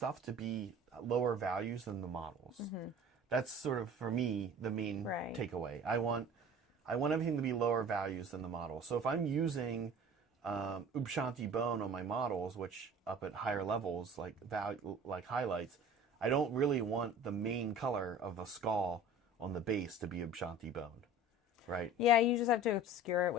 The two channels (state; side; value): normal; both; correlation 0.43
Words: to be lower values than the models. That's sort of for me the main takeaway. I want everything to be lower values than the model. So if I'm using Ubshanti bone on my models, which up at higher levels like highlights, I don't really want the main color of the skull on the base to be Ubshanti bone, right? Yeah, you just have to obscure it